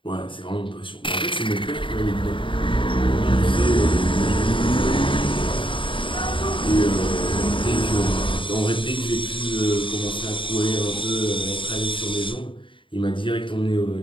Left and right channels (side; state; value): right; late; 0.25 ms